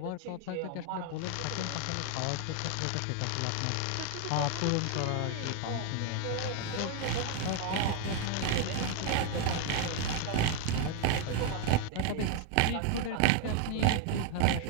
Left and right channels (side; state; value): both; different; correlation 0.01